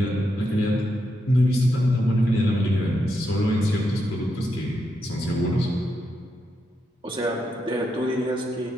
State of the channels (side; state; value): both; normal; correlation 0.83